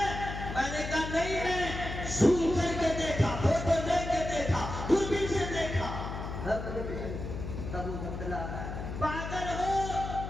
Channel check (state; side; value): noise; left; hum, 6 dB below the sound